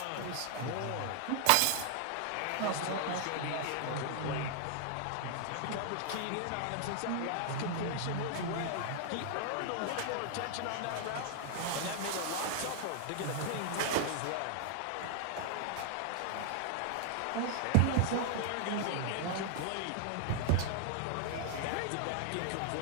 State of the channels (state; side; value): different; both; correlation -0.01